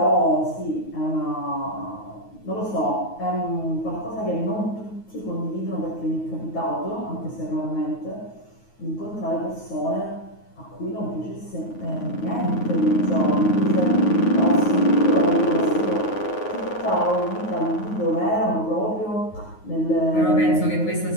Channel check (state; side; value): late; right; 9.4 ms